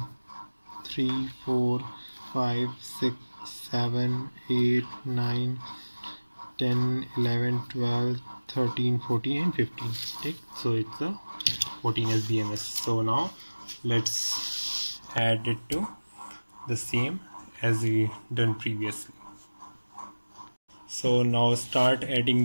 3, 4, 5, 6, 7, 8, 9, 10, 11, 12, 13, 14 and 15. Take. So it's a 14S BMS. So now let's add it to the same as we done previously. So now start adding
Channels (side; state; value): both; inverted; correlation -1.00